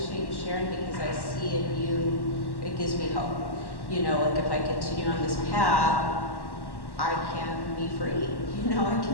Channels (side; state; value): right; late; 1.1 ms